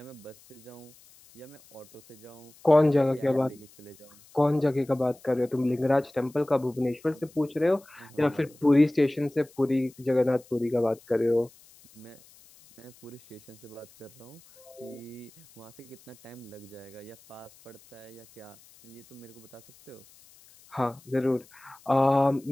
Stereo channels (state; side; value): noise; left; hiss, 25 dB below the sound